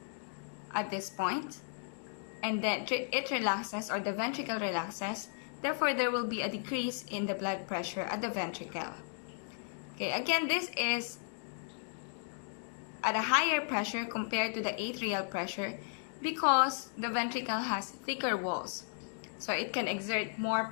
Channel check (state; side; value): silent; right; digital silence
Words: at this point, and then it relaxes, or the ventricle relaxes. Therefore, there will be a decrease in the blood pressure at the ventricle. Okay, again, this is at a higher pressure compared to the atrial pressure because the ventricle has thicker walls. So it can exert more